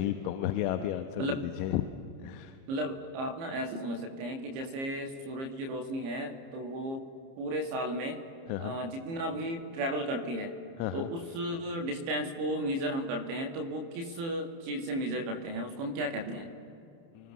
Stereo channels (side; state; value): left; late; 30 ms